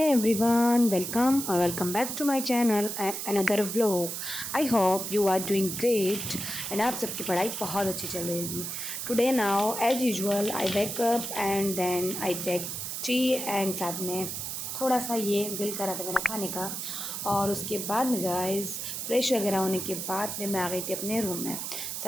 everyone, welcome or welcome back to my channel and another vlog. I hope you are doing great and आप सबकी पढ़ाई बहुत अच्छी चल रही होगी. Today now as usual I wake up and then I take tea and साथ में थोड़ा सा ये दिल करा था मेरा खाने का. और उसके बाद में गाइस फ्रेश वगैरह होने के बाद में मैं आ गई थी अपने रूम में.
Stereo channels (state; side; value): noise; right; hiss, 5 dB below the sound